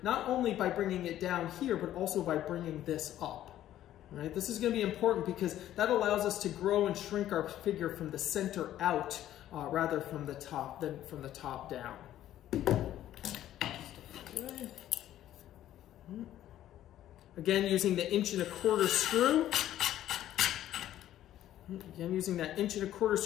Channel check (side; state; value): right; quieter; 12.5 dB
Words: not only by bringing it down here, but also by bringing this up. Right? This is going to be important because that allows us to grow and shrink our figure from the center out rather from the top than from the top down. Again, using the 1¼ inch screw. Again, using that 1¼ inch